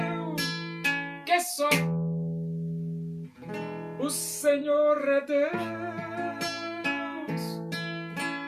que só o Senhor é Deus,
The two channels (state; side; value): identical; both; correlation 1.00